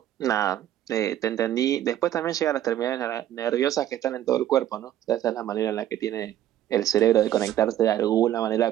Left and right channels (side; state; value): left; quieter; 12.2 dB